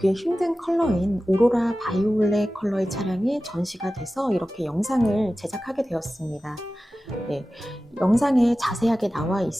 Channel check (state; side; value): normal; both; correlation 0.95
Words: 힘든 컬러인 오로라 바이올렛 컬러의 차량이 전시가 돼서 이렇게 영상을 제작하게 되었습니다. 네, 영상에 자세하게 나와